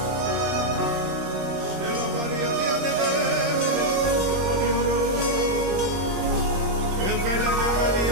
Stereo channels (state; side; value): late; left; 21 ms